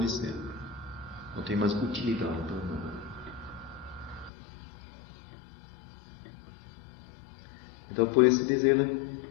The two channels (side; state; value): right; drops out; at 4.3 s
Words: ser. Não tem mais utilidade para nada. Então, por isso diz ele,